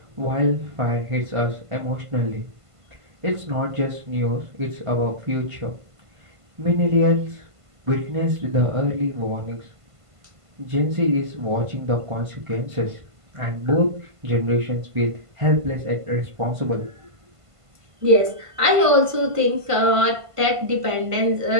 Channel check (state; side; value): late; left; 1.5 ms